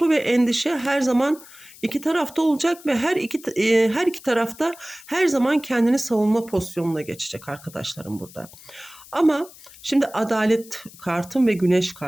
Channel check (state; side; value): noise; left; hiss, 21 dB below the sound